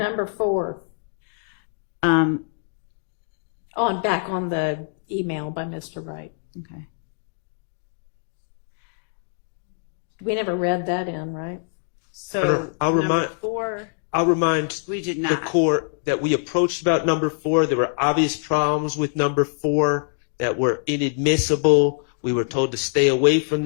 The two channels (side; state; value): right; silent; digital silence